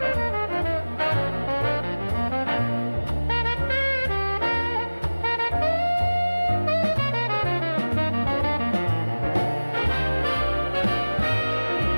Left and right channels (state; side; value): inverted; both; correlation -1.00